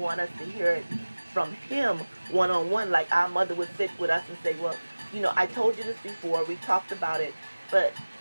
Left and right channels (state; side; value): inverted; both; correlation -1.00